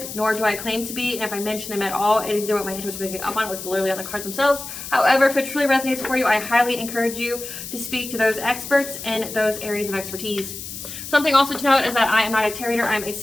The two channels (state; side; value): noise; left; hiss, 10 dB below the sound